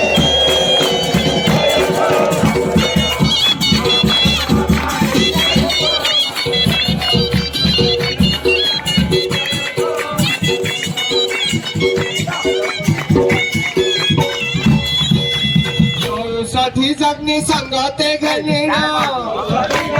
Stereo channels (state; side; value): identical; both; correlation 1.00